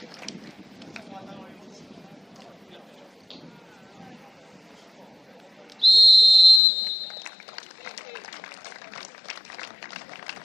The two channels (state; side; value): drops out; right; at 6.6 s